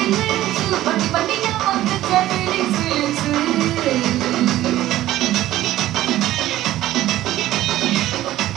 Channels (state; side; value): quieter; left; 14.6 dB